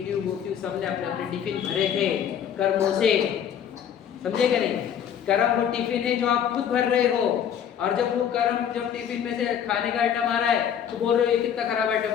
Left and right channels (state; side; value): quieter; right; 8.8 dB